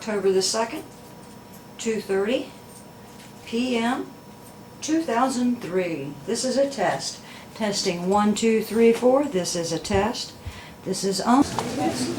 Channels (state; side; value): identical; both; correlation 1.00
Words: the 2nd, 2:30 p.m. 2003. This is a test. Testing 1, 2, 3, 4. This is a test. This is on.